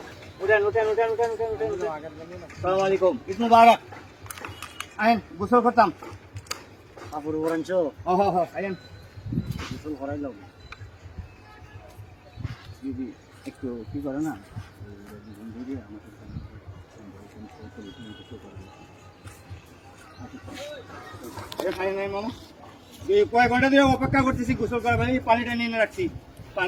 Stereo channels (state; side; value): identical; both; correlation 1.00